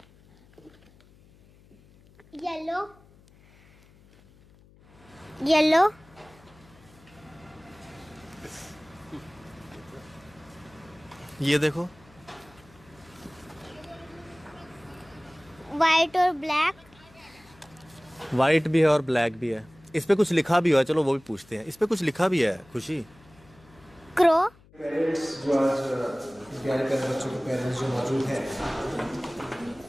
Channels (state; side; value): noise; left; hum, 26 dB below the sound